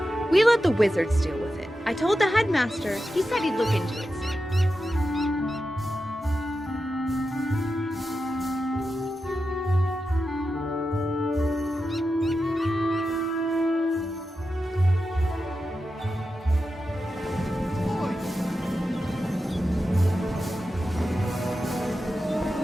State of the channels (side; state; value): both; normal; correlation 0.90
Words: We let the wizards deal with it. I told the headmaster. He said he'd look into it.